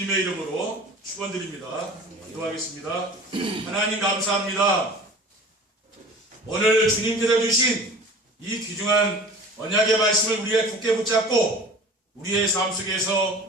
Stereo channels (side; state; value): both; normal; correlation 0.41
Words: 이름으로 축원드립니다. 기도하겠습니다. 하나님 감사합니다. 오늘 주님께서 주신 이 귀중한 언약의 말씀을 우리가 굳게 붙잡고 우리의 삶